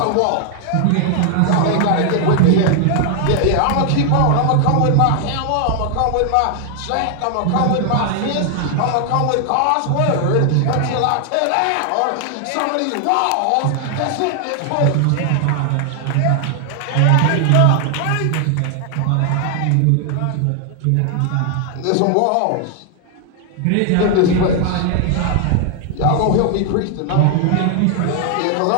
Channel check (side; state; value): both; different; correlation 0.00